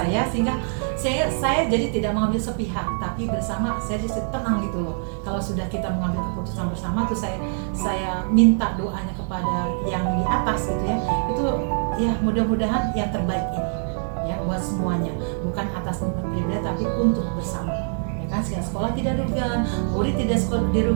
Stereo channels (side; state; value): left; silent; digital silence